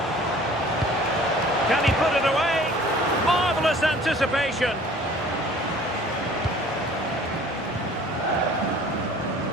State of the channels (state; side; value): normal; both; correlation 0.50